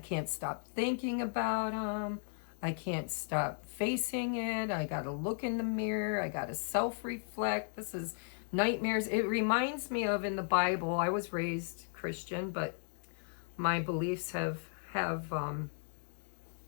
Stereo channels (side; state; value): right; silent; digital silence